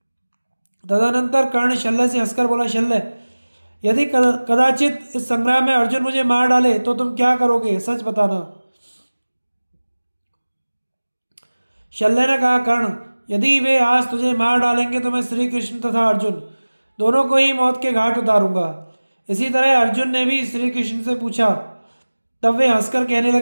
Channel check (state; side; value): inverted; both; correlation -1.00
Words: तदनंतर कर्ण शल्य से हंसकर बोला, शल्य, यदि कदाचित इस संग्राम में अर्जुन मुझे मार डाले तो तुम क्या करोगे, सच बताना। शल्य ने कहा, कर्ण, यदि वे आज तुझे मार डालेंगे तो मैं श्री कृष्ण तथा अर्जुन दोनों को ही मौत के घाट उतारूंगा। इसी तरह अर्जुन ने भी श्री कृष्ण से पूछा। तब वे हंसकर कहने